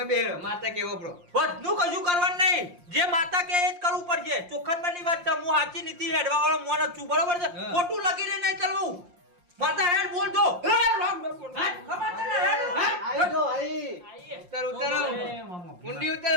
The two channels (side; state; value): left; late; 5.7 ms